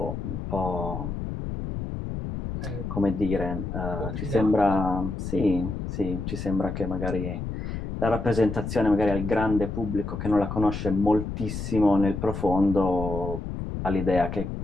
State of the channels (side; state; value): left; noise; rumble, 5 dB below the sound